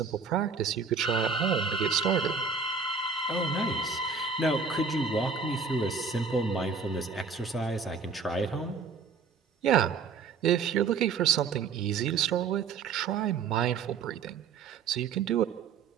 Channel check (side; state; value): left; quieter; 5.4 dB